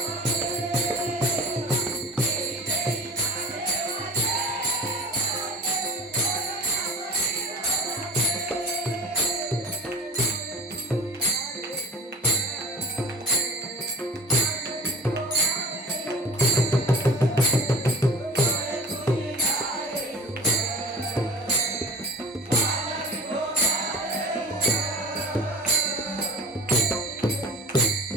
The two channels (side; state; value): both; normal; correlation 0.40